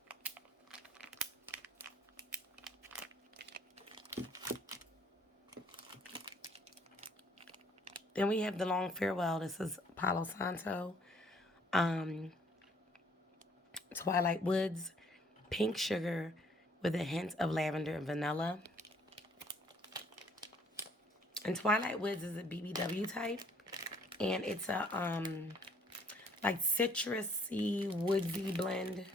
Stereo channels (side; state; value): both; normal; correlation 0.62